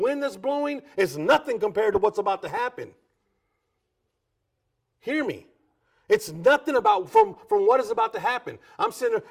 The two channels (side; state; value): both; identical; correlation 1.00